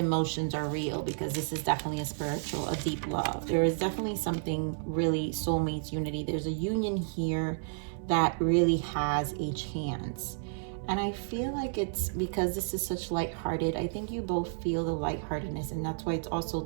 are real, because this is definitely a deep love. There is definitely something really soulmates, unity. There's a union here that really has a chance. And I feel like it's because this is such lighthearted. I think you both feel the lightheartedness, and that's why it's also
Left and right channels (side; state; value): left; silent; 57 dB below the other